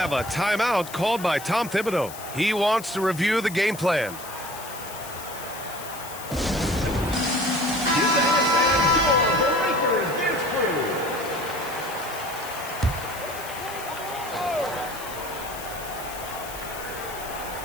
a timeout called by Tom Thibodeau. He wants to review the game plan.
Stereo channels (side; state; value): left; noise; hiss, 13 dB below the sound